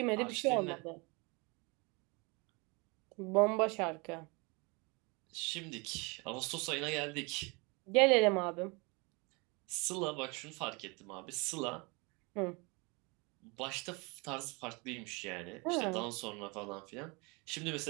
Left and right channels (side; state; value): left; quieter; 28.7 dB